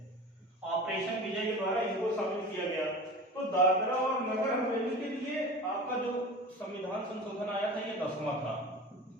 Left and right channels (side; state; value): both; normal; correlation 0.34